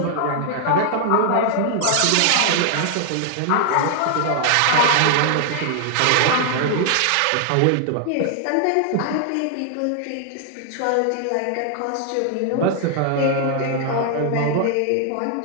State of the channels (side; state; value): both; different; correlation 0.00